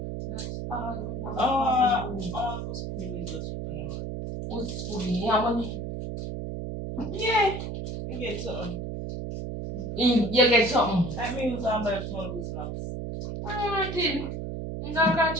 That's all no one for you. Who's putting me just Who's putting you money? Yeah. You get something. You get something. Like me use and buy small good snacks. Alright then. I'm gonna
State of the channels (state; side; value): noise; right; hum, 5 dB below the sound